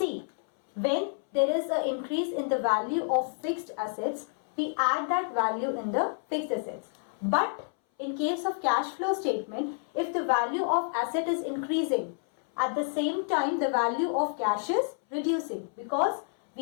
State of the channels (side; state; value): right; silent; 58 dB below the other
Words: when there is an increase in the value of fixed assets, we add that value in the fixed assets. But in case of cash flow statement, if the value of asset is increasing, at the same time the value of cash is reducing because